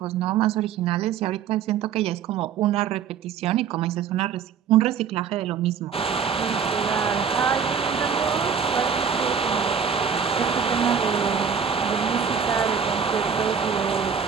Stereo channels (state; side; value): quieter; left; 7.0 dB